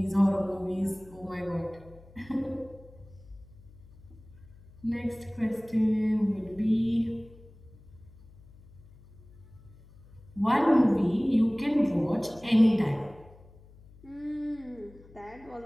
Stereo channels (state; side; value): noise; left; hum, 23 dB below the sound